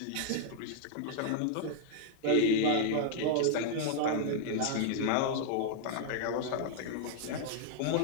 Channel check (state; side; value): different; both; correlation 0.00